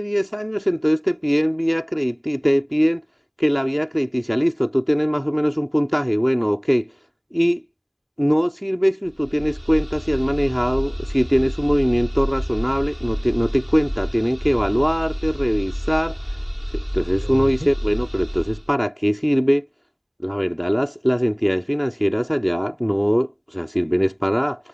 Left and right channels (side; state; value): both; identical; correlation 1.00